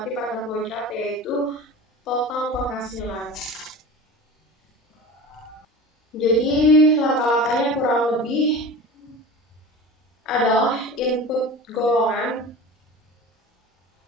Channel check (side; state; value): both; normal; correlation 0.34